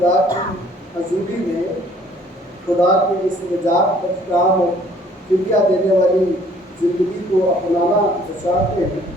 کی حضوری میں خدا کے اس نجات بخش اور فدیہ دینے والی زندگی کو اپنانا چاہتے ہیں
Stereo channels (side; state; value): both; normal; correlation 0.58